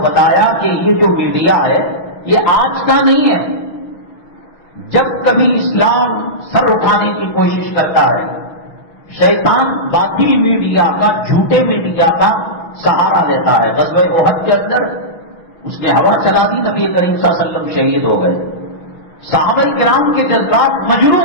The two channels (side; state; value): right; late; 6.2 ms